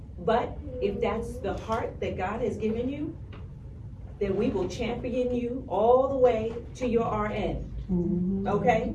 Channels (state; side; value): identical; both; correlation 1.00